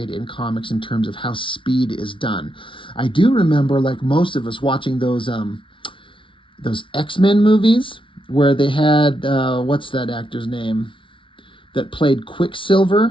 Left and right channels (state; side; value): late; right; 0.25 ms